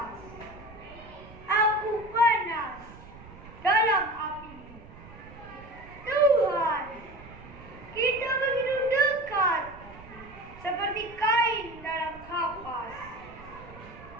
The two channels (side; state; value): right; noise; rumble, 18 dB below the sound